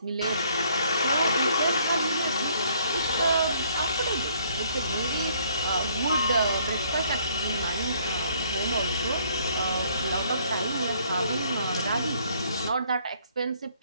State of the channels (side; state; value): both; inverted; correlation -0.63